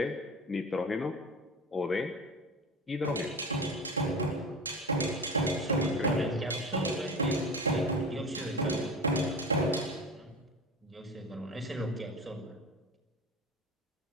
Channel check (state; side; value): normal; both; correlation 0.30